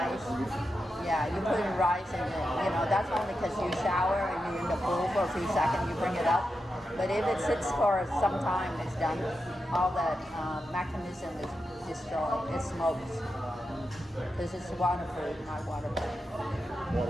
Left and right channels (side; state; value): both; normal; correlation 0.88